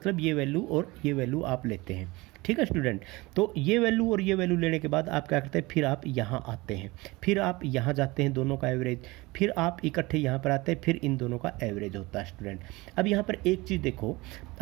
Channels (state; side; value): quieter; left; 22.4 dB